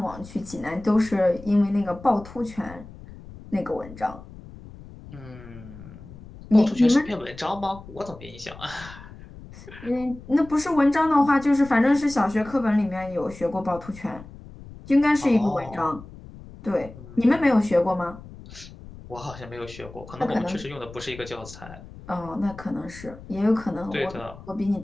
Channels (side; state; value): left; noise; rumble, 17 dB below the sound